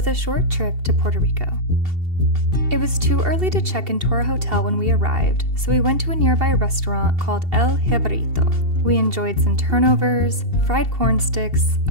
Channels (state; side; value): late; left; 2.7 ms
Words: a short trip to Puerto Rico. It was too early to check into our hotel when we arrived, so we went to a nearby restaurant called El Jibarito. We enjoyed some turnovers, fried corn sticks,